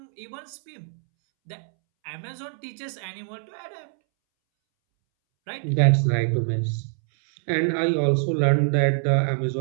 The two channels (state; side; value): silent; left; 62 dB below the other